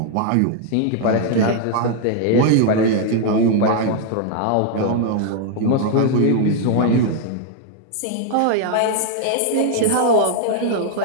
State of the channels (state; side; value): different; both; correlation 0.00